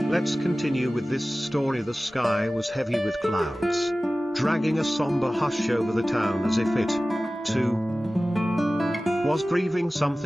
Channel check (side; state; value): both; normal; correlation 0.97